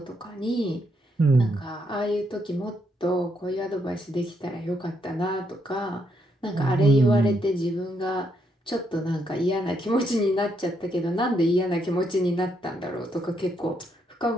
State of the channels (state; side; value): normal; both; correlation 0.77